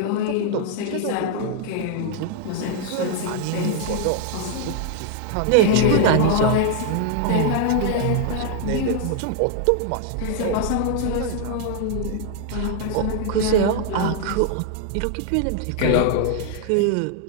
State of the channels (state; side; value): different; both; correlation 0.00